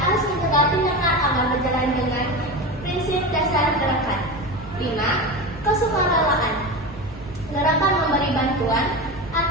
mencegah tindakan agar berjalan dengan prinsip dasar gerakan. 5. Kesukarelaan, gerakan memberi bantuan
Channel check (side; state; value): both; normal; correlation 0.24